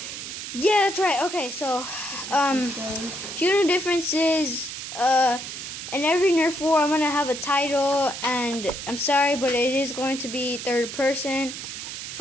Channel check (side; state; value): right; noise; hiss, 8 dB below the sound